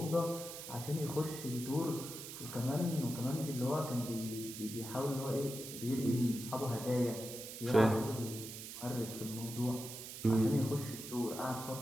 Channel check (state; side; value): noise; right; hiss, 10 dB below the sound